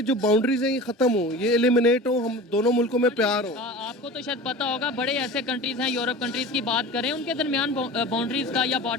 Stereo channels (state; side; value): normal; both; correlation 0.35